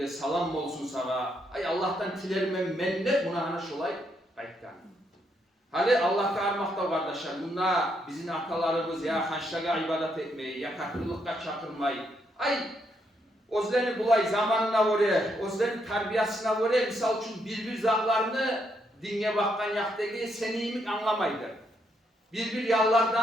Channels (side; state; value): both; normal; correlation 0.76